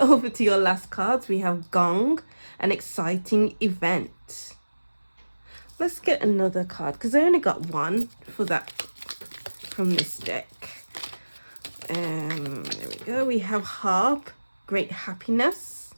to your last cards. We have Gong, an exciting event. Let's get another card because I only got one for that from this deck. There we go. We have Harp, great happiness.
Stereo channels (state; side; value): inverted; both; correlation -1.00